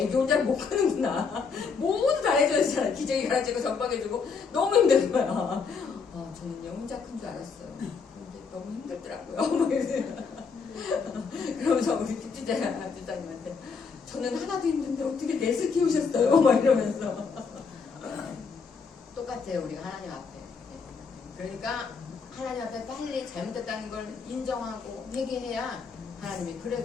혼자 못 크는구나. 모두 다 해줘야 되잖아. 기저귀 갈아주고 전방해주고 너무 힘든 거야. 저는요 혼자 큰 줄 알았어요. 근데 너무 힘들더라고요. 그러면서 우리 집주장님한테 저는 하나도 힘든데 어떻게 넷을 키우셨어요? 막 이러면서 똑같아요. 우리가 하나님 앞에. 그러니까 하나님 앞에 빨리 잘못했다는 걸 인정하고 회개해야 하나님이 그래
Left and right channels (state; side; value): quieter; right; 5.4 dB